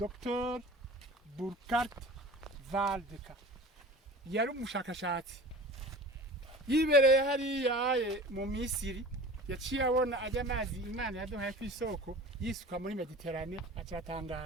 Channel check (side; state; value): both; normal; correlation 0.39